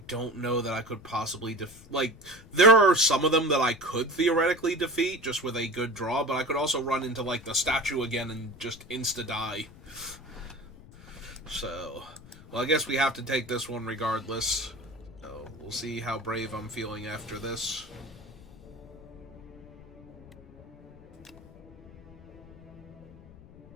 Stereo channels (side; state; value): left; noise; rumble, 20 dB below the sound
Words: don't know that I could possibly there are some of them that I could theoretically defeat just with a good draw, but I could also run into, like, the statue again and just insta-die. So, well, I guess we have to take this one regardless. So, we'll see how brave I'm feeling after this.